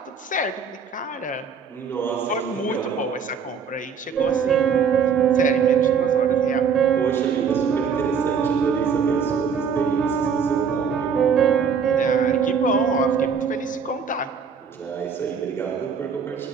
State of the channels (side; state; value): left; quieter; 6.3 dB